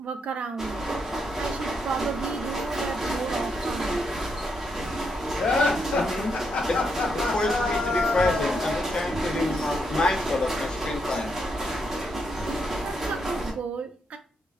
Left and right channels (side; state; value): both; normal; correlation 0.80